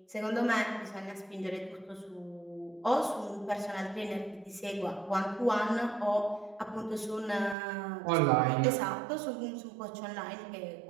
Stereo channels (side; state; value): left; drops out; at 7.6 s